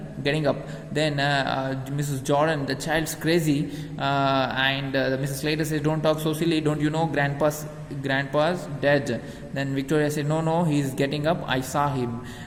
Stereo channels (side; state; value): both; identical; correlation 1.00